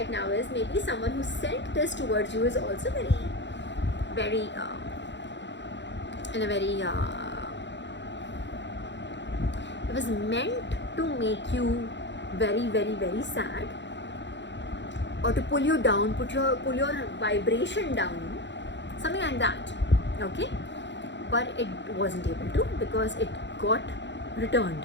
now is maybe someone who sent this towards you is also very, in a very, it was meant to make you very, very, very sad, or to pull you down, pull your vibration down, something like that. Okay, but it wasn't able to because it got returned.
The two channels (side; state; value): right; late; 0.52 ms